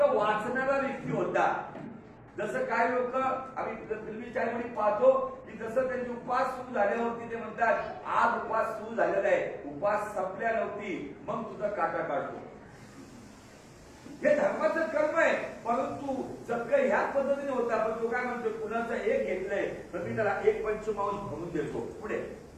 वाचणारा व्यक्ती होता. जसं काय लोक आम्ही फिल्मी चॅनलमध्ये पाहतो की जसं त्यांचे उपास सुरू झाल्यावरती ते म्हणतात आज उपास सुरू झालेला आहे, उपास संपल्या नव्हती, मग तुझा काटा काढतो. हे धर्माचं कर्म आहे. परंतु सगळं ह्याच पद्धतीने होता. पण तो काय म्हणतो, कुणाचं एक घेतलंय तर मी त्याला एक पंचमांश भरून देतो. पुढे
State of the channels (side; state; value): both; identical; correlation 1.00